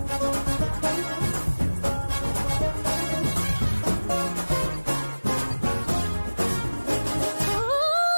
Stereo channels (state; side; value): inverted; both; correlation -1.00